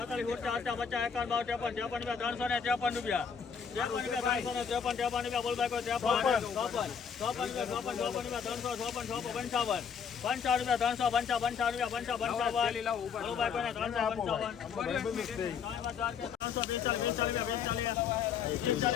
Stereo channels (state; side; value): quieter; right; 6.7 dB